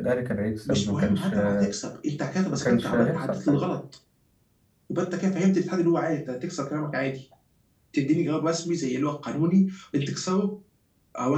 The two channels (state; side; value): identical; both; correlation 1.00